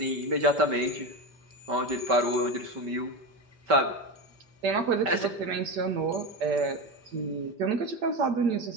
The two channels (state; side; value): late; left; 5.2 ms